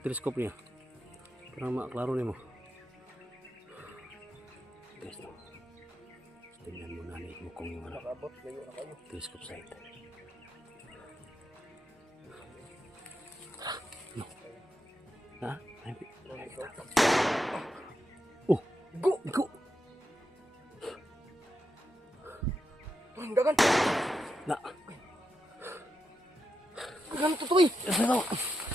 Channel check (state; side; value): normal; both; correlation 0.86